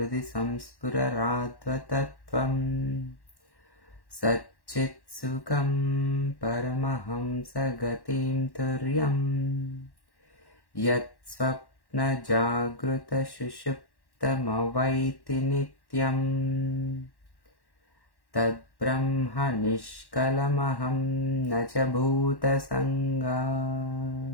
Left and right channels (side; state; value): right; late; 1.1 ms